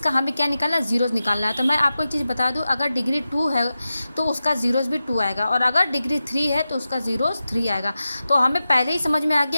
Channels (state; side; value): inverted; both; correlation -0.93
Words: हमें क्या निकालना है, जीरोज निकालना है। तो मैं आपको एक चीज़ बता दूं, अगर डिग्री 2 है तो उसका जीरोज भी 2 आएगा, और अगर डिग्री 3 है तो उसका जीरोज 3 आएगा। तो हमें पहले ही समझ में आ